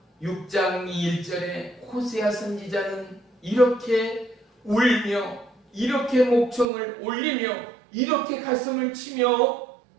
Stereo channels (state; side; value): drops out; left; at 6.7 s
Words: 6장 1절에 호세아 선지자는 이렇게 울며 이렇게 목청을 올리며 이렇게 가슴을 치며